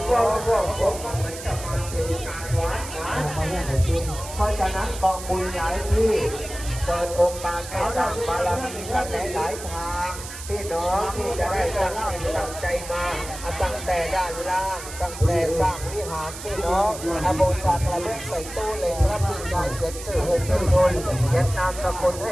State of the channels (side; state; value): right; noise; hiss, 12 dB below the sound